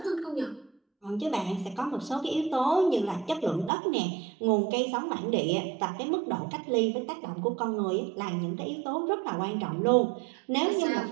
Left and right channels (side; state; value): left; drops out; at 3.7 s